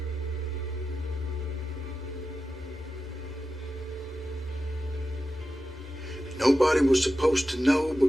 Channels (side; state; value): both; normal; correlation 0.92